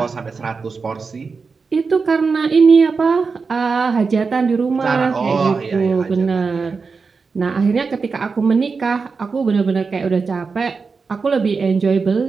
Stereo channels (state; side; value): quieter; left; 4.8 dB